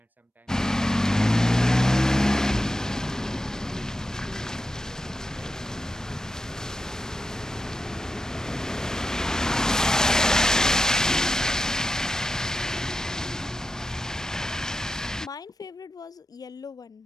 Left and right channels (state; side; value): normal; both; correlation 0.90